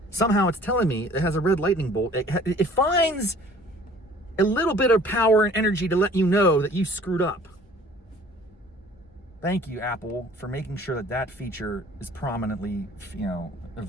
Somehow it's telling me it has a red lightning bolt. It finds a little bit of power and energy to let you know that you screwed up. Thank you, Apple, for making sure that feature is prominently,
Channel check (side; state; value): both; normal; correlation 0.51